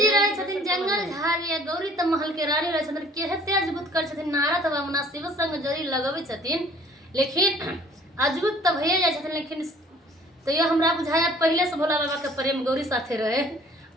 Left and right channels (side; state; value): both; normal; correlation 0.54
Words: रहे छथिन जंगल झाड़िया, गौरी त महल के रानी रहे छथिन। केहते अजबुत कर छथिन नारद बाबा शिव संग जरी लगवे छथिन, लेकिन अजबुत त भइए जाय छथिन। लेकिन तो ये हमरा बुझाया पहले से भोला बाबा के प्रेम गौरी साथे रहे।